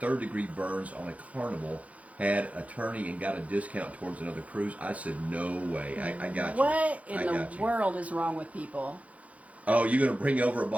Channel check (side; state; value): left; late; 0.067 ms